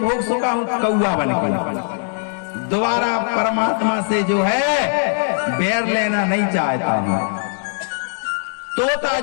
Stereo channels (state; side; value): silent; right; digital silence